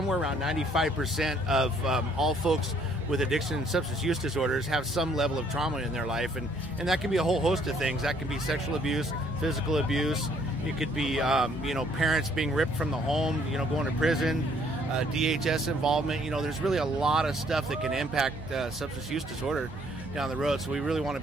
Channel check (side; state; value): both; normal; correlation 0.64